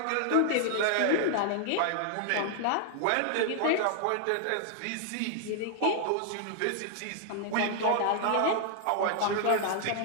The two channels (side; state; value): both; different; correlation 0.00